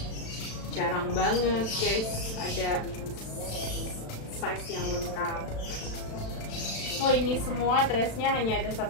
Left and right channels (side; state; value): right; late; 36 ms